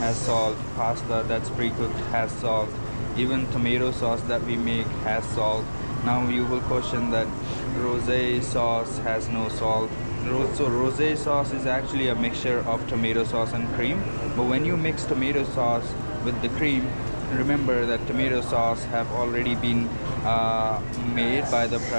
salt, pasta that's pre-cooked has salt, even tomato sauce that we make has salt. Now you will question that rosé sauce has no salt. So rosé sauce is actually a mixture of tomato sauce and cream. But when you mix tomato sauce with the cream, remember that tomato sauce have already been made by the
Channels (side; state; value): both; inverted; correlation -1.00